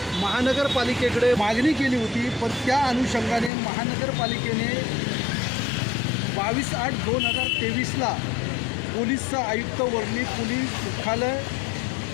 महानगरपालिकेकडे मागणी केली होती. पण त्या अनुषंगाने महानगरपालिकेने 22/8/2023ला पोलीस आयुक्त वर्ली पोलीस मुख्यालय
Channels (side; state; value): right; drops out; at 3.5 s